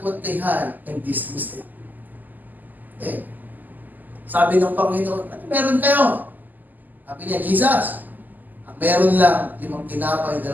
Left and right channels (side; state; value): left; late; 0.084 ms